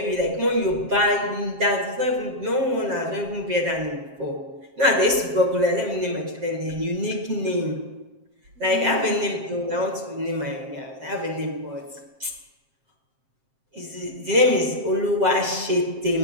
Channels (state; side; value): late; left; 7.6 ms